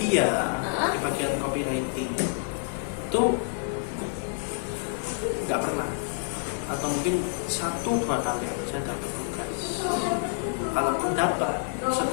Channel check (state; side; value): silent; right; digital silence